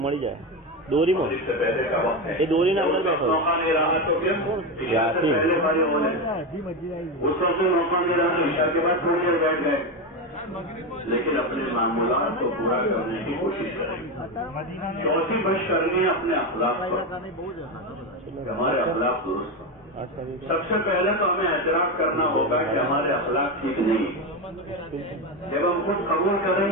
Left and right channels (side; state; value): both; normal; correlation 0.14